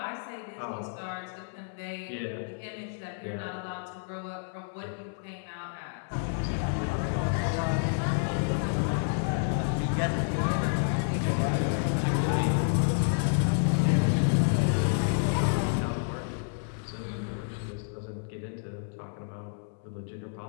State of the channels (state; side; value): silent; right; 57 dB below the other